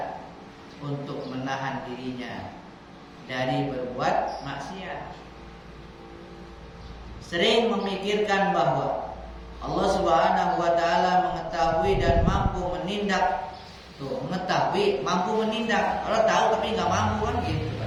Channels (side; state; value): both; identical; correlation 1.00